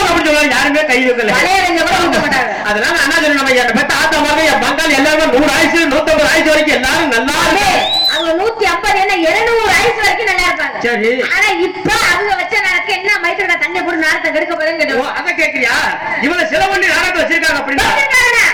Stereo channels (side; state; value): both; identical; correlation 1.00